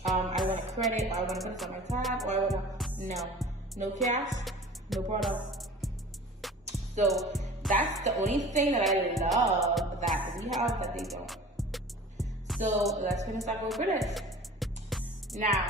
I want a credit, or I want to put it on my tab, or I want to, no cash, no product. So that's the only thing that I love that we have that they don't. So let's finish up with British.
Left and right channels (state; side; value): normal; both; correlation 0.42